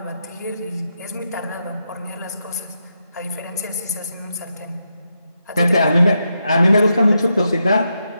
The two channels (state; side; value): inverted; both; correlation -0.84